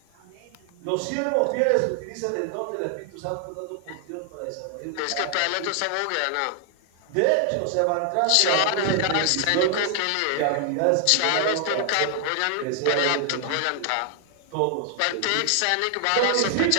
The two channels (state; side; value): different; both; correlation 0.00